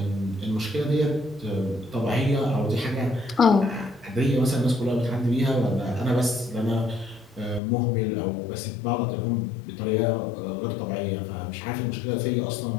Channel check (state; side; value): drops out; right; at 7.6 s